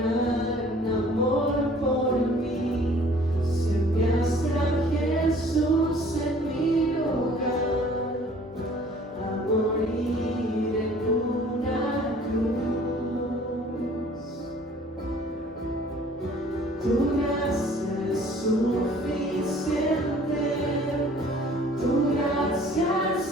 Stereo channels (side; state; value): both; normal; correlation 0.53